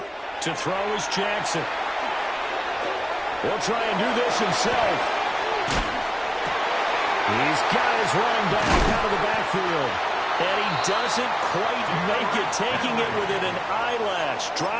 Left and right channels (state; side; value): identical; both; correlation 1.00